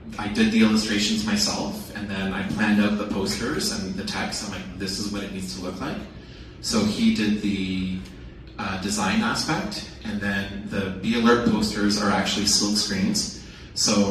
did the illustrations myself, and then I planned out the posters and the text. I'm like, this is what it needs to look like. So he did the design aspect, and then the Be Alert posters are actually silk screens.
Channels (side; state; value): both; identical; correlation 1.00